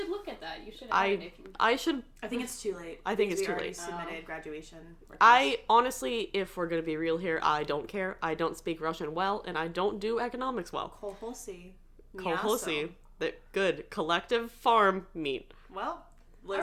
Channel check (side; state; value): both; identical; correlation 1.00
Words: look at that. You should add it if you... I should... I think it's too late. I think it's too late. late. Submitted graduation requests. I honestly, if we're going to be real here, I don't care. I don't speak Russian well, and I don't do economics well. Kolhosi. Kolhosi. Good. Collective farm meat. Well,